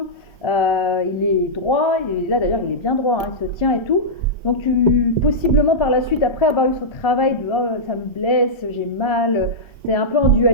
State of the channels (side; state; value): right; late; 1.3 ms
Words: il est droit, et là d'ailleurs, il est bien droit, hein, il se tient et tout. Donc possiblement par la suite, après avoir eu ce travail de oh, ça me blesse, j'ai mal, tu es un peu en